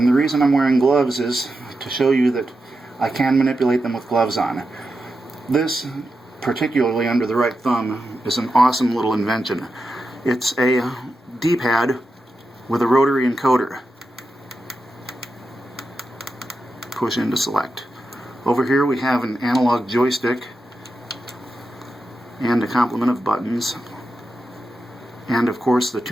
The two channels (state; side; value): normal; both; correlation 0.89